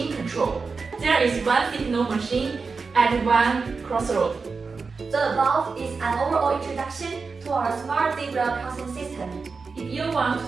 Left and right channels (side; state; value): left; quieter; 4.6 dB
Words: control. There is one signal machine at one crossroad. The above is an overall introduction to our smart zebra crossing system. If you want